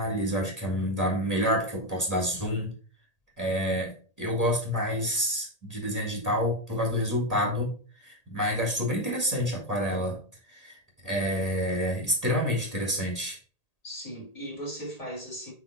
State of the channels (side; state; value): right; late; 1.8 ms